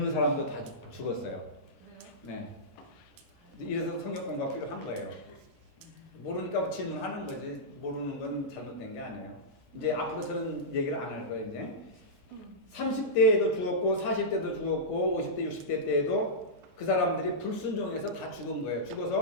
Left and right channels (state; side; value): normal; both; correlation -0.14